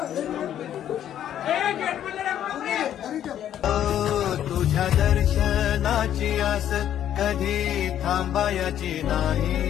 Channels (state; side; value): quieter; right; 10.7 dB